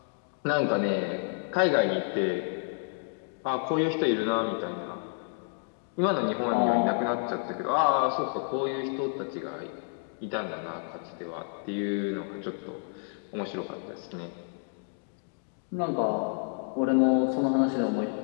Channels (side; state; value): right; silent; 58 dB below the other